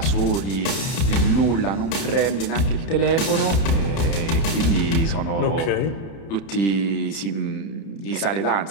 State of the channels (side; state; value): right; late; 31 ms